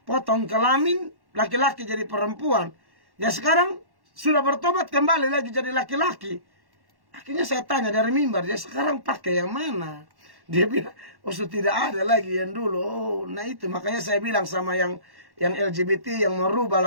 potong kelamin, laki-laki jadi perempuan. Ya sekarang sudah bertobat kembali lagi jadi laki-laki. Akhirnya saya tanya dari mimbar, dia sekarang pakai yang mana? Dia bilang, oh sudah tidak ada lagi yang dulu. Oh, nah itu makanya saya bilang sama yang LGBT yang merubah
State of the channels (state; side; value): late; left; 1.1 ms